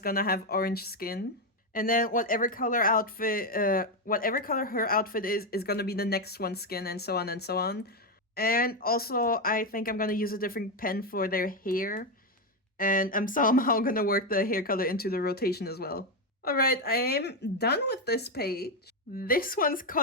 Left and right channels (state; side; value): normal; both; correlation 0.07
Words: gonna have orange skin. And then whatever color her outfit is gonna be the next one's skin, and so on and so on. And also, I think I'm gonna use a different pen for their hair. And I'm somehow gonna work the hair color into the rotation as well. Alright, I am done with this page. This one's